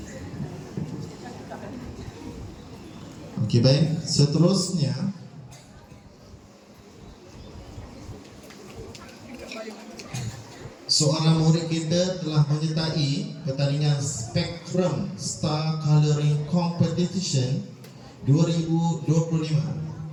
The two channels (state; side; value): identical; both; correlation 1.00